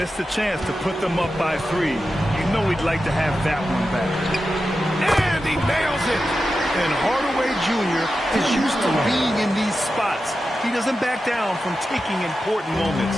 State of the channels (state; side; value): normal; both; correlation 0.91